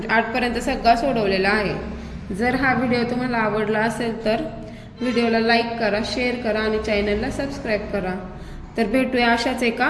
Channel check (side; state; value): both; identical; correlation 1.00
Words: 8पर्यंत सगळा सोडवलेला आहे. जर हा व्हिडिओ तुम्हाला आवडला असेल तर व्हिडिओला लाईक करा, शेअर करा आणि चॅनलला सबस्क्राईब करा. तर भेटूया अशाच एका